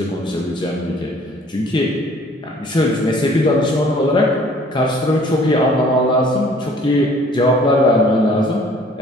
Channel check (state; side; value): normal; both; correlation 0.55